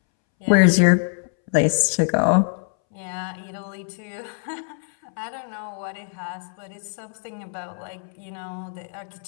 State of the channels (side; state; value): right; silent; 63 dB below the other